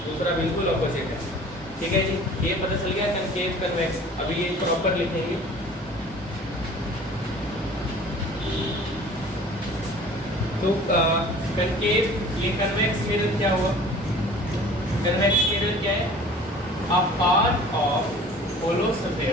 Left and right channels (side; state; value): both; normal; correlation 0.46